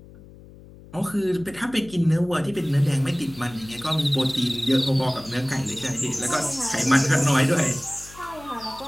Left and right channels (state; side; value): noise; left; hum, 20 dB below the sound